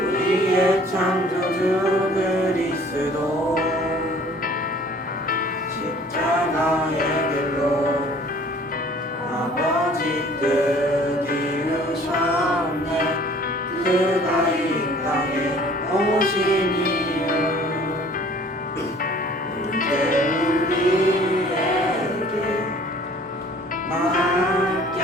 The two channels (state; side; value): normal; both; correlation 0.52